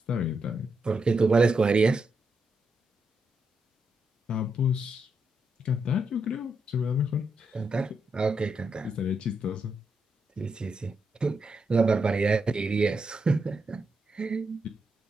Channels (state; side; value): normal; both; correlation 0.83